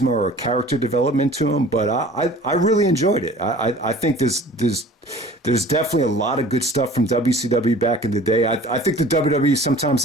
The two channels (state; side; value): normal; both; correlation 0.46